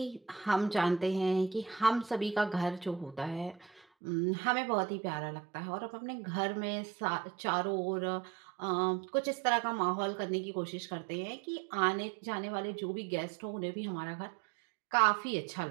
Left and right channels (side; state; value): left; drops out; at 3.8 s